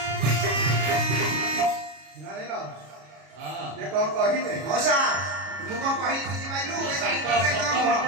କଣ କହିବେ ମଉସା ମୁଁ କଣ କହିଲି ବୁଝିପାରିଲୁ ସତ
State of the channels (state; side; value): late; left; 33 ms